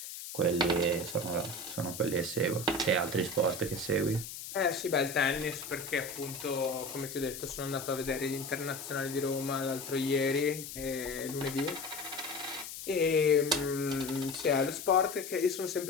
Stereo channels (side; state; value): left; noise; hiss, 10 dB below the sound